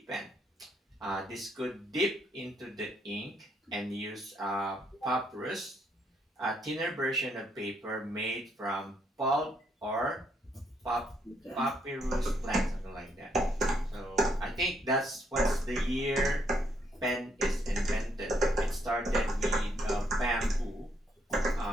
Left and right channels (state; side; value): normal; both; correlation 0.73